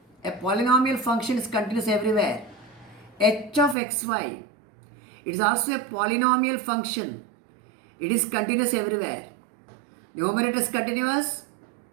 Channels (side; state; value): left; drops out; at 3.8 s